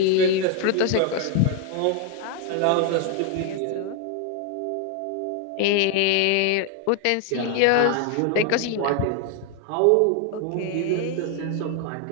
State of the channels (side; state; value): both; different; correlation 0.01